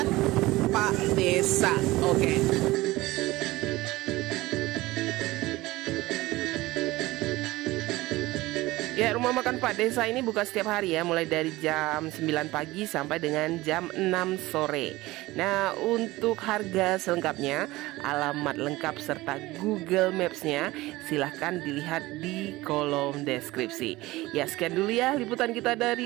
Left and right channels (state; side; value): quieter; left; 19.1 dB